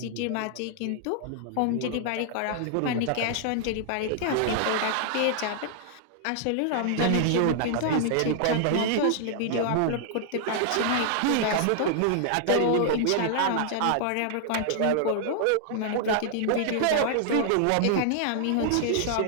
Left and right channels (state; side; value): different; both; correlation -0.01